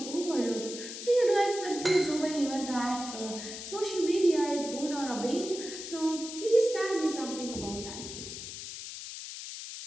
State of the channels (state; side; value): noise; left; hiss, 9 dB below the sound